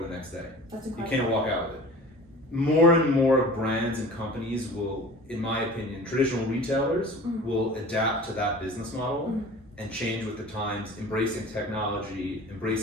the next day. That's incredible. You can't walk out with it. More and more brands and companies will, in my opinion, traditional retailers will adapt to that business model and change with the times, embracing technology,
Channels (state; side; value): normal; both; correlation 0.41